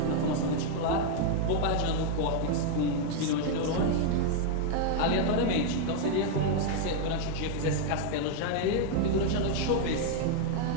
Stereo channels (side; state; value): both; different; correlation 0.00